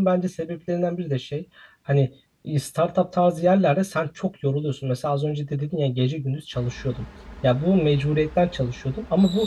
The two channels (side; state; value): both; identical; correlation 1.00